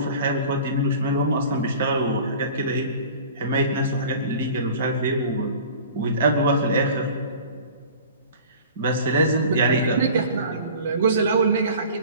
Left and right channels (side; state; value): both; inverted; correlation -0.43